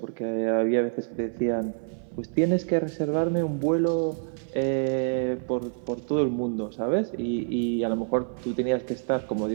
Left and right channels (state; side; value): silent; left; 57 dB below the other